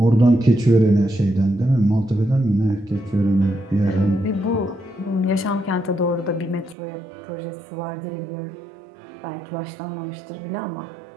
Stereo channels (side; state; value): left; drops out; at 6.8 s